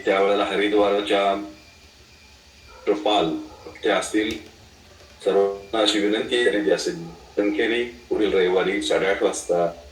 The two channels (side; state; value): both; identical; correlation 1.00